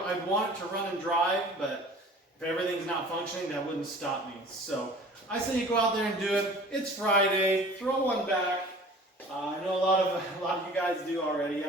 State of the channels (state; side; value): normal; both; correlation 0.45